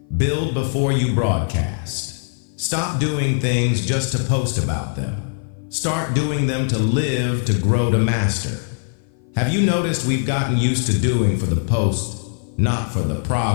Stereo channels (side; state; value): right; silent; 57 dB below the other